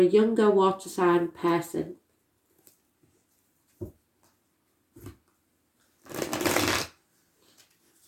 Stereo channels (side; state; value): both; identical; correlation 1.00